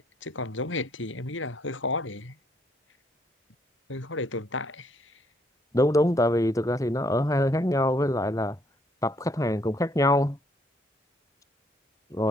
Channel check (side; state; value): both; normal; correlation 0.68